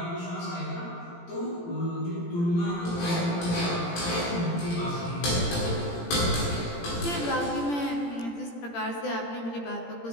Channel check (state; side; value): late; right; 17 ms